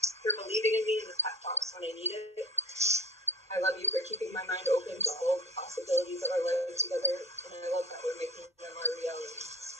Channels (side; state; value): both; normal; correlation 0.38